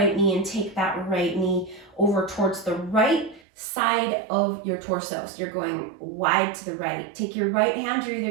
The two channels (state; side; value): drops out; left; at 3.4 s